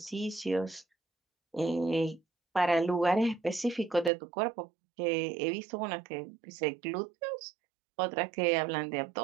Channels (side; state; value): left; drops out; at 4.1 s